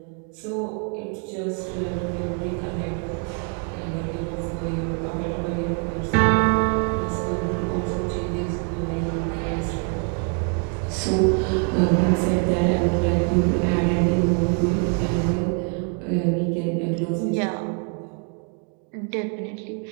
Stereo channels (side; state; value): left; quieter; 37.0 dB